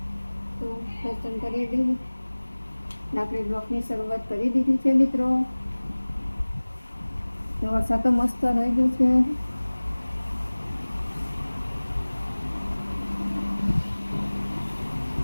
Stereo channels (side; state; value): both; inverted; correlation -1.00